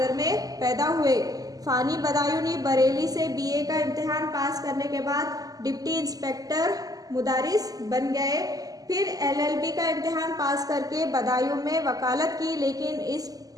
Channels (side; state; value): left; late; 0.17 ms